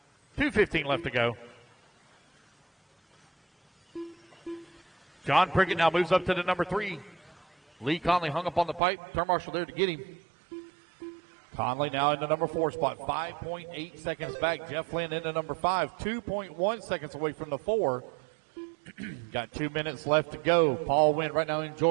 2:15 left to go. John Prickett now moves up to the number 3. Lee Conley hung up on the pipe. Turn marshal there to get him. Conley now in the number 4 spot, 5.8 seconds back. Jeff Lynn in the number 5, 2.1 seconds away from the 4. Got 2 minutes left to go. Paul Wynn right now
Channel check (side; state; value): left; drops out; at 8.8 s